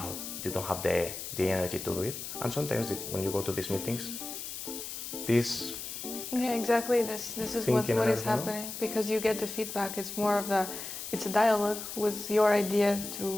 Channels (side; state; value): left; noise; hiss, 8 dB below the sound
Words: you don't have the energy to do it. And sometimes when you go to these meetings, this Yeah, exactly. This is what is happening, because you get the feedback. It's more of it's a dialogue with your idea